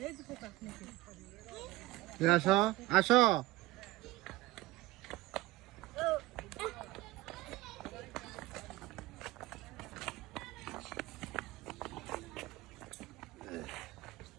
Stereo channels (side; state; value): left; quieter; 18.8 dB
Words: এই যে পোকা নাকি। আসো আসো।